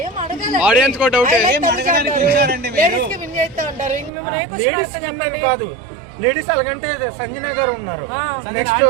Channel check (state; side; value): drops out; left; at 4.1 s